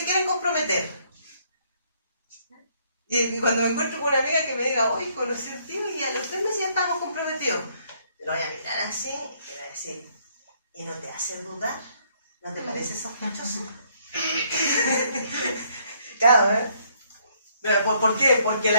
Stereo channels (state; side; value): inverted; both; correlation -0.68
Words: quieren comprometer. Y cuando me encuentro con una amiga que me diga, oye, conocí a un tío y a los 3 meses ya estamos comprometidos, lo voy a mirar así y voy a decir, ¿y no te hace dudar? ¿No te parece sospechoso? Claro, ¿eh? ¿Por qué? Porque